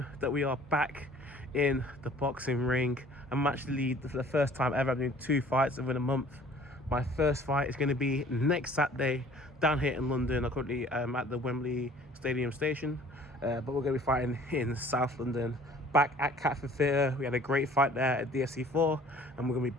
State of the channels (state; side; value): normal; both; correlation 0.52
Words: that we are back in the boxing ring. I'm actually, for the first time ever, I'm doing 2 fights within a month. My first fight is going to be next Saturday down here in London. I'm currently at the Wembley Stadium station, but we're going to be fighting in South London, back at Catford Theatre. We had a great fight there at DFC 4, and we're going to be